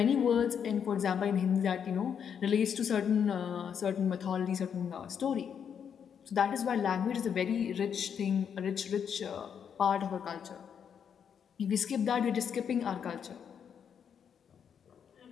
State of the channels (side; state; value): right; quieter; 7.7 dB